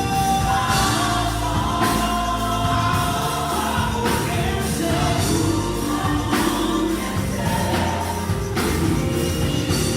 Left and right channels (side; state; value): both; identical; correlation 1.00